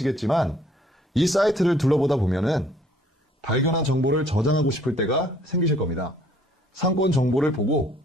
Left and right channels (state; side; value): normal; both; correlation 0.60